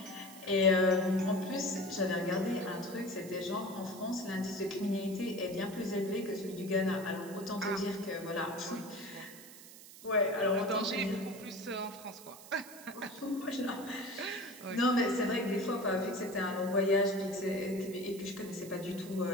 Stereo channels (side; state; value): right; noise; hiss, 17 dB below the sound